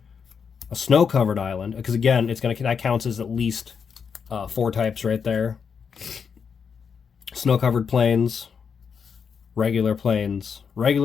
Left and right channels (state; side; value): quieter; right; 6.4 dB